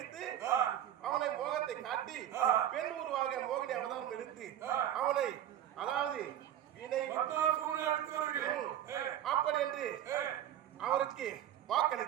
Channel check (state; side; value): quieter; left; 11.3 dB